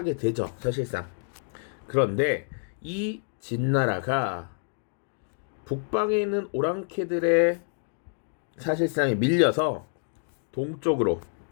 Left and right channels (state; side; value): silent; right; 60 dB below the other